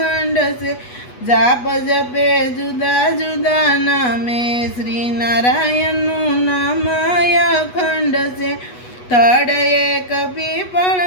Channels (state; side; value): late; right; 8.2 ms